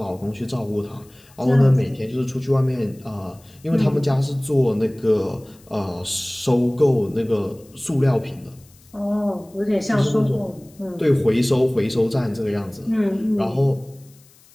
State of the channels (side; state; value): left; noise; hiss, 28 dB below the sound